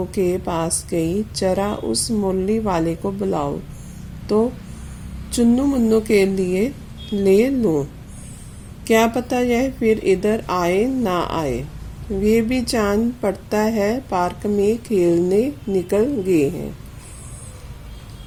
के पास गई। जरा उस मुरली वाले को बुलाओ तो चुन्नू मुन्नू के लिए ले लूं। क्या पता यह फिर इधर आए ना आए। वे भी जान पड़ता है पार्क में खेलने निकल गए हैं।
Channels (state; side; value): identical; both; correlation 1.00